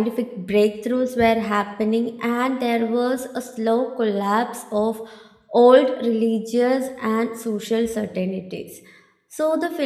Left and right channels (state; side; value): identical; both; correlation 1.00